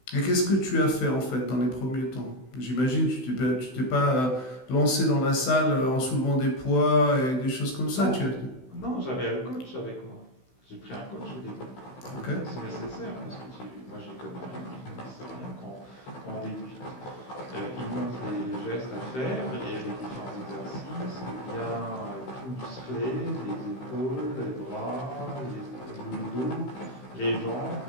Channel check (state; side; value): late; right; 16 ms